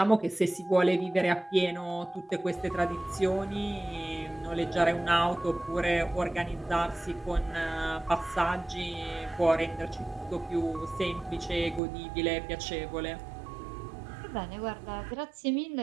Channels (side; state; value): left; drops out; at 11.8 s